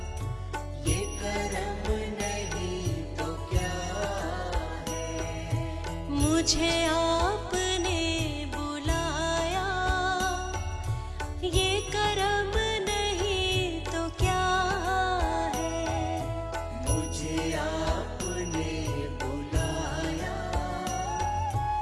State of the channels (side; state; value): both; identical; correlation 1.00